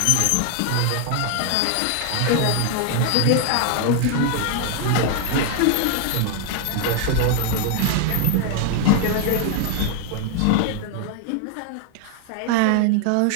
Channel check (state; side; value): different; both; correlation 0.01